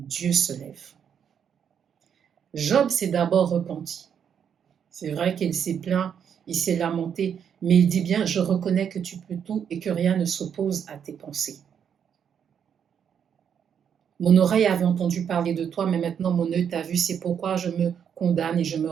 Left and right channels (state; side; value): quieter; left; 8.0 dB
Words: se lève. Job s'est d'abord repenti. C'est vrai qu'il s'est plaint, il s'est lamenté, mais il dit bien, je reconnais que tu peux tout et que rien ne s'oppose à tes pensées. Mon oreille avait entendu parler de toi, mais maintenant mon œil t'a vu, c'est pourquoi je me condamne et je me